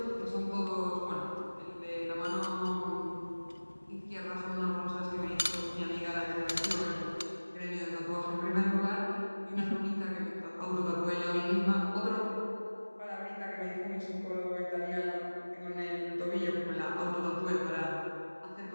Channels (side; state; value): both; inverted; correlation -1.00